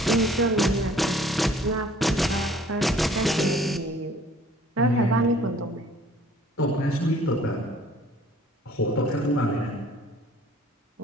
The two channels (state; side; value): normal; both; correlation 0.54